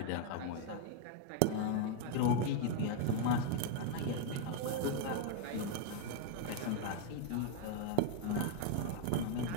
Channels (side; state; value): both; different; correlation 0.00